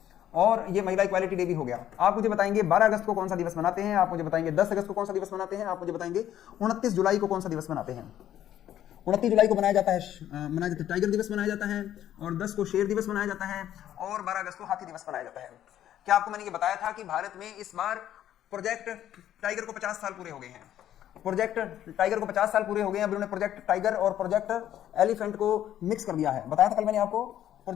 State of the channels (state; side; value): quieter; right; 11.5 dB